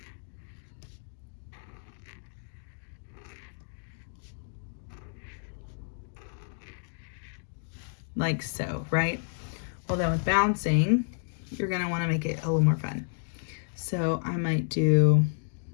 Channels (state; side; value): silent; right; digital silence